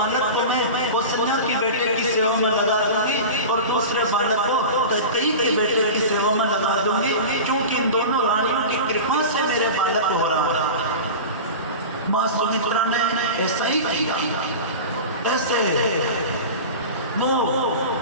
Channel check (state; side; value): inverted; both; correlation -0.30